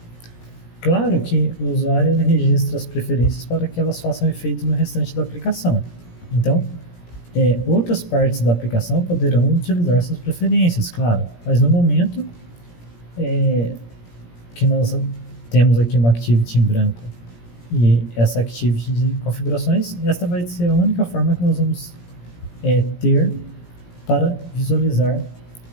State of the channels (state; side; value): late; right; 17 ms